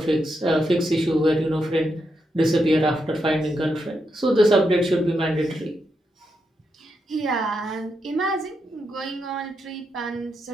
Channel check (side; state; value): both; normal; correlation 0.83